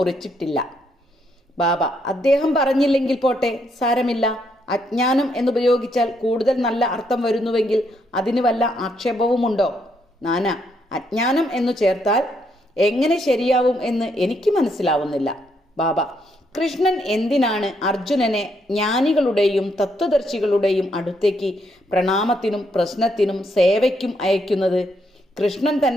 ബാബ: അദ്ദേഹം പറഞ്ഞില്ലെങ്കിൽ പോട്ടെ, സാരമില്ല. അജ്ഞാനം എന്നുപയോഗിച്ചാൽ കൂടുതൽ നല്ല അർത്ഥം വരുന്നുവെങ്കിൽ അതിന് വല്ല ആക്ഷേപവുമുണ്ടോ? നാന: അജ്ഞാനം എന്നു ചേർത്താൽ എങ്ങനെ ശരിയാവും എന്ന് എനിക്ക് മനസ്സിലാവുന്നില്ല. ബാബ: കൃഷ്ണൻ എന്തിനാണ് അർജുനനെ ജ്ഞാനികളുടെയും തത്വദർശികളുടെയും അടുത്തേക്ക് പ്രണാമത്തിനും പ്രശ്നത്തിനും സേവയ്ക്കും അയക്കുന്നത്? കൃഷ്ണൻ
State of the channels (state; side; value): normal; both; correlation 0.75